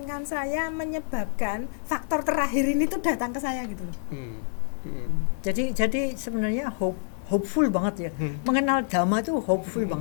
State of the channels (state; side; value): silent; right; digital silence